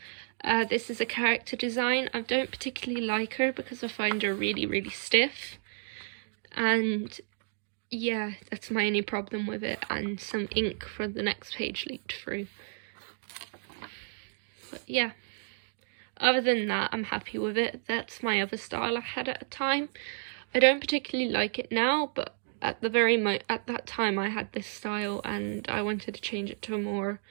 This is a character design. I don't particularly like her because I find her really stiff, and yeah, that's my only problem with it, and some ink for the next page leaked through. But yeah, other than that, I'm happy with it. That's my other style I had at a time. I don't particularly like it now, but at that time I had this style and I wanted to change it to a more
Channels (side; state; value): left; silent; digital silence